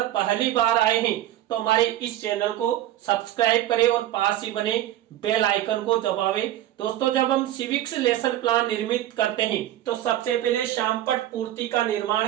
पहली बार आए हैं तो हमारे इस चैनल को सब्सक्राइब करें और पास ही बने बेल आइकन को दबावें। दोस्तों, जब हम सिविक्स लेसन प्लान निर्मित करते हैं तो सबसे पहले श्यामपट्ट पूर्ति का निर्माण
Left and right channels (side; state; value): left; quieter; 13.1 dB